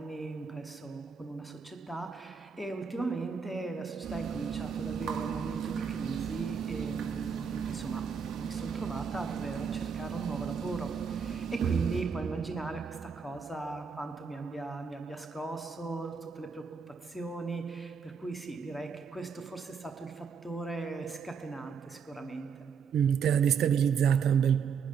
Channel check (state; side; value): quieter; left; 6.3 dB